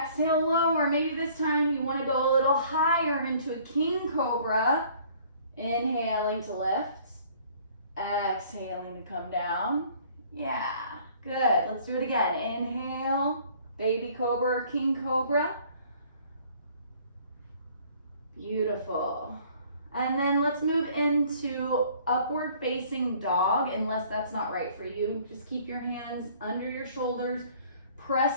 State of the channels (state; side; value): inverted; both; correlation -0.55